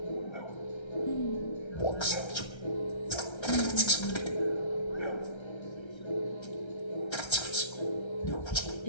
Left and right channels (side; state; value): right; late; 1.3 ms